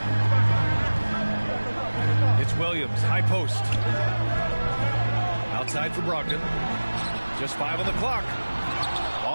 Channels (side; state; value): both; inverted; correlation -1.00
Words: It's Williams. High post. Outside for Brogdon. Just 5 on the clock.